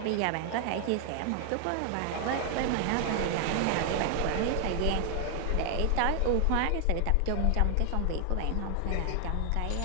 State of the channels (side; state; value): both; different; correlation 0.00